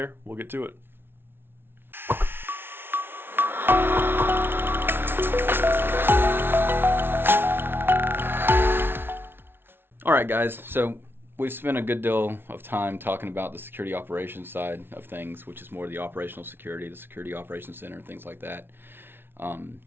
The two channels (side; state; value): left; late; 0.11 ms